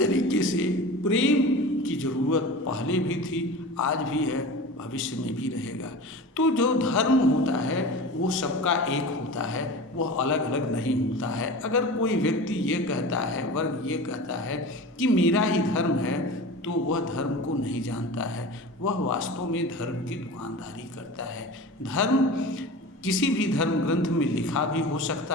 से प्रेम की ज़रूरत पहले भी थी, आज भी है, भविष्य में भी रहेगा। तो जो धर्म होता है वो सबका एक होता है, वह अलग अलग नहीं होता है। अगर कोई व्यक्ति ये कहता है, वर्ग ये कहता है कि मेरा ही धर्म है, तो वह धर्म को नहीं जानता है, वह वास्तव में धर्म की दुकानदारी करता है। धर्म किसी भी धर्म ग्रंथ में लिखा भी हो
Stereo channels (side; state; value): both; normal; correlation 0.33